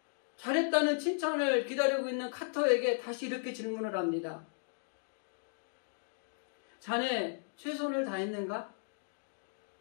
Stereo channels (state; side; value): silent; right; digital silence